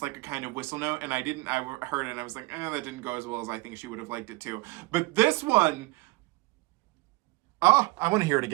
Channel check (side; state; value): left; quieter; 23.3 dB